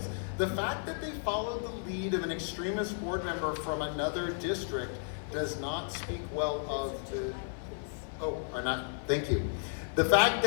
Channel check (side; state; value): right; silent; 55 dB below the other